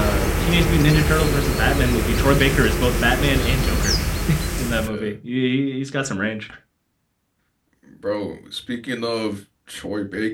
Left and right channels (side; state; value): both; identical; correlation 1.00